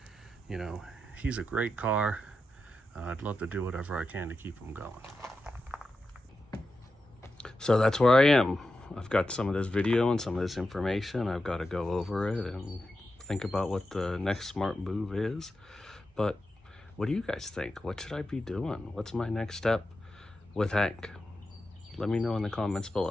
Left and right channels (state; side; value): normal; both; correlation 0.90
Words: you know, he's a great car. I'd love to do whatever I can to keep him going. So that's where I am. I've got some of this video and some of this information. I've got to go over it and think about what the next smart move is. But what do you guys think? What should I be doing? What's my next step with Hank? Let me know in the comments